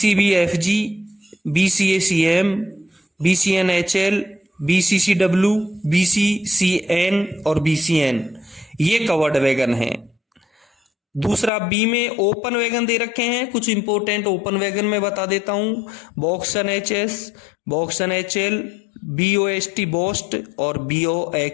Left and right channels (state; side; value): drops out; right; at 11.5 s